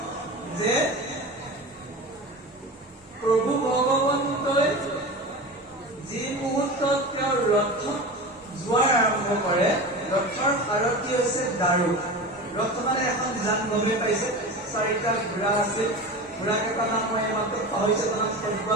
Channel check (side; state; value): both; normal; correlation 0.29